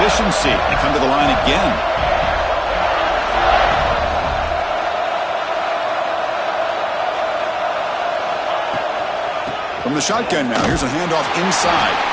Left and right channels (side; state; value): both; identical; correlation 1.00